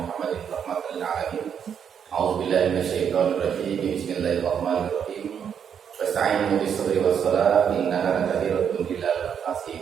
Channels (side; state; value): left; quieter; 7.9 dB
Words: rahmatan lil alamin. A'udzu billahi minasyaitonir rajim. Bismillahirrahmanirrahim. Wasta'inu bis sabri was salat innaha lakabiratun illal